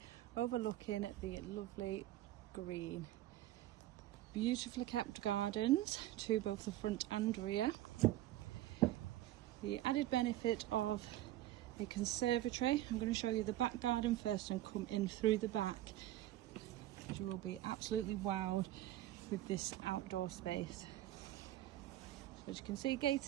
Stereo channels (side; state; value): left; quieter; 14.6 dB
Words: overlooking the lovely green. Beautifully kept gardens to both the front and rear. The added benefit of a conservatory. I'm going to show you the back garden first and come in through the back. You will be absolutely wowed with this outdoor space. As you can see,